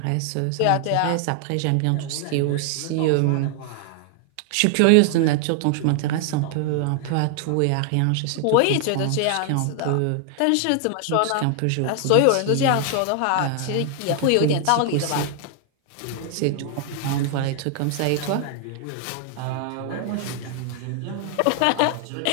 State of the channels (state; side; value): different; both; correlation 0.00